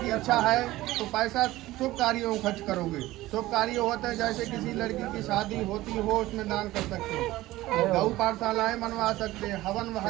इच्छा है तो पैसा शुभ कार्यों में खर्च करोगे। शुभ कार्य होते हैं जैसे किसी लड़की की शादी होती हो उसमें दान कर सकते हो, गौ पाठशालाएँ बनवा सकते हैं, हवन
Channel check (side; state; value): left; quieter; 17.1 dB